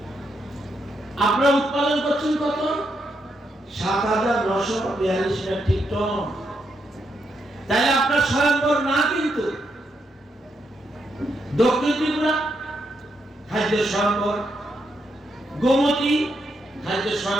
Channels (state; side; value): normal; both; correlation 0.80